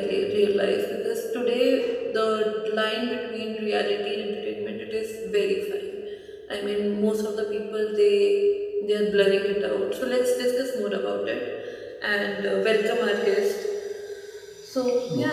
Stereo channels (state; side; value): identical; both; correlation 1.00